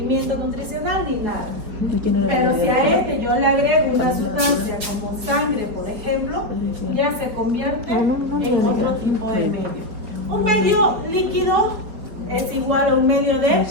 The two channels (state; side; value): late; left; 4.9 ms